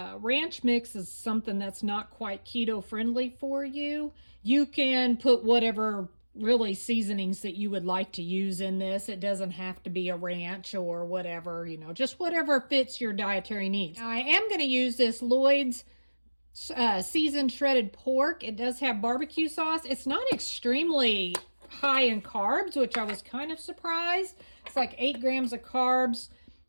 ranch mix is something that's not quite keto friendly for you, you can put whatever really seasonings that you would like to use in this. It doesn't have to be a ranch or whatever, just whatever fits your dietary needs. Now, I am going to use this Lloyd's seasoned shredded pork. It does have barbecue sauce. It's not extremely high in carbs, which I was kind of surprised. It's like 8 grams of carbs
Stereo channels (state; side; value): inverted; both; correlation -1.00